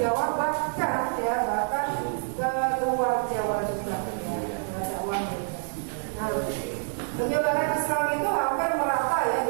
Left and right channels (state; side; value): silent; left; digital silence